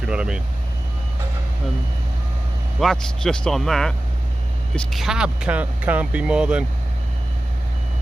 you know what I mean. Well, that's just on that. This cab can't be more than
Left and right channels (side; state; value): both; normal; correlation 0.95